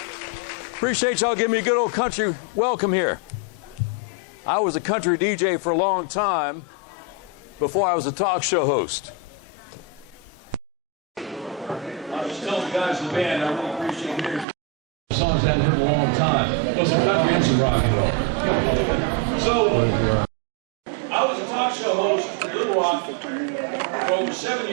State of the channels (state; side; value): drops out; left; at 14.5 s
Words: Appreciate y'all giving me a good old country welcome here. I was a country DJ for a long time before I was a talk show host. I was just telling the guys in the band, I really appreciate hearing songs I hadn't heard in a long time. Both some country and some rock and roll. So, I was a talk show host for Little Rock for over 7